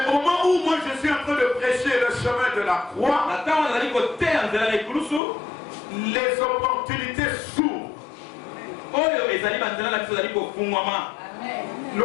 au moment où moi je suis en train de prêcher le chemin de la croix, les opportunités s'ouvrent.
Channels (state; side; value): drops out; right; at 5.2 s